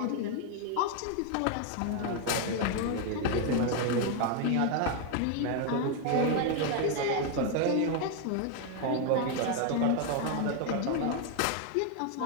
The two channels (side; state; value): both; different; correlation 0.01